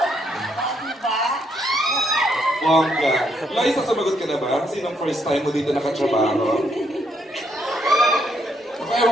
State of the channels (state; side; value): normal; both; correlation 0.74